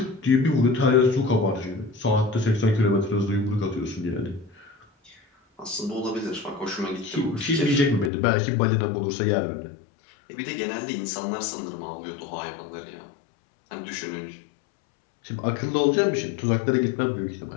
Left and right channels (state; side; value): drops out; right; at 8.1 s